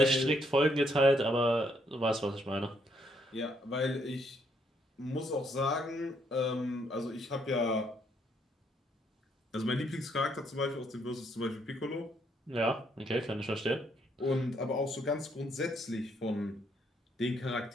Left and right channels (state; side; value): normal; both; correlation 0.72